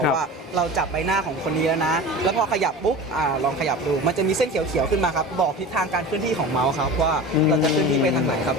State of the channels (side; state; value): both; normal; correlation 0.33